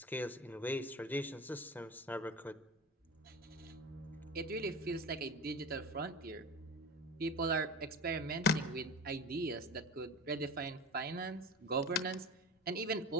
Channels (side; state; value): both; normal; correlation 0.33